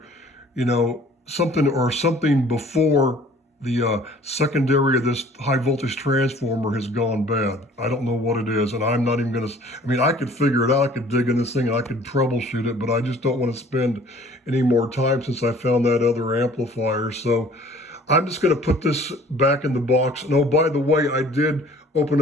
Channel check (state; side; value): normal; both; correlation 0.52